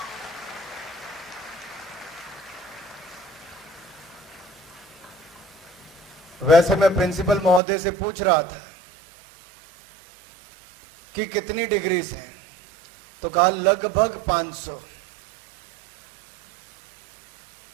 वैसे मैं प्रिंसिपल महोदय से पूछ रहा था कि कितनी डिग्रीज हैं, तो कहा लगभग 500।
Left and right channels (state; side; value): drops out; left; at 7.6 s